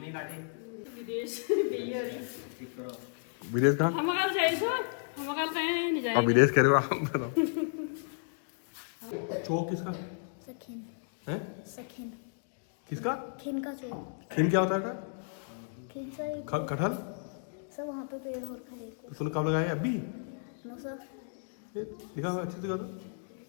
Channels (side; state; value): right; silent; digital silence